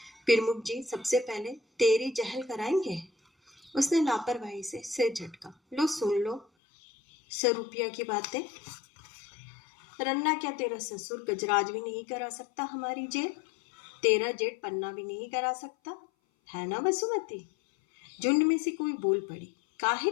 प्रमुख जी सबसे पहले तेरी जहल कराएंगे। उसने लापरवाही से सिर झटका। लो सुन लो सरूपिया की बातें। रन्ना क्या तेरा ससुर गजराज भी नहीं करा सकता हमारी जेल? तेरा जेठ पन्ना भी नहीं करा सकता, है ना बसुमती? झुंड में से कोई बोल पड़ी। काहे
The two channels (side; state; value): right; drops out; at 6.5 s